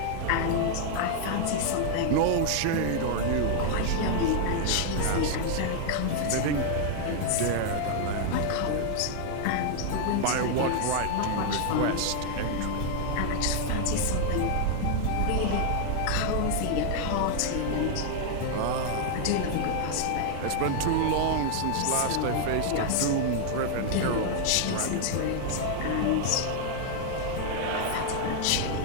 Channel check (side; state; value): both; different; correlation 0.00